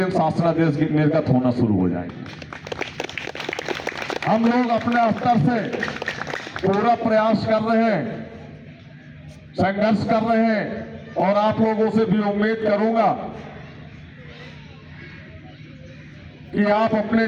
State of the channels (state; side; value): identical; both; correlation 1.00